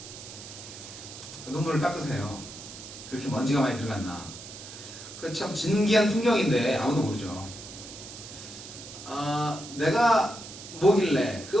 눈물을 닦으세요. 그렇게 먼지가 많이 들어갔나. 그 참 진기한 풍경인데 아무도 모르죠. 내가 뭐길래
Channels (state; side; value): noise; right; hiss, 13 dB below the sound